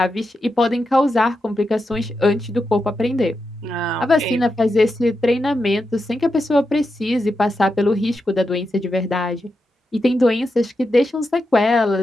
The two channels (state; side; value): normal; both; correlation 0.87